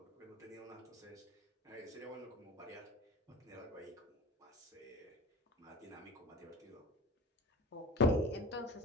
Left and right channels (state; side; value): normal; both; correlation 0.37